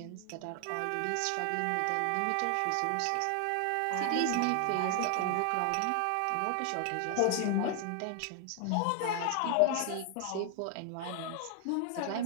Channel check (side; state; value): both; different; correlation 0.00